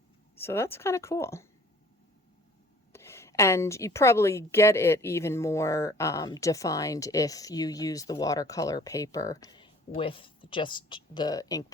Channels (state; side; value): normal; both; correlation 0.52